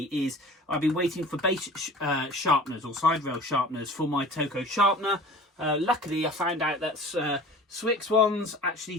is I've been waiting for base sharpeners or side rail sharpeners for my Toco sharpener. Luckily, I found out that Swix ones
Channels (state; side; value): normal; both; correlation 0.42